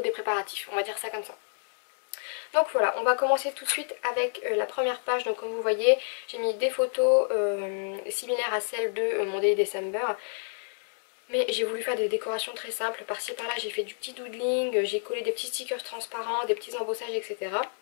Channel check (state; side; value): silent; right; 59 dB below the other